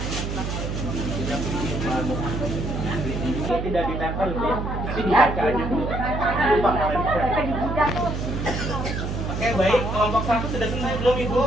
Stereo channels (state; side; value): noise; right; hum, 3 dB below the sound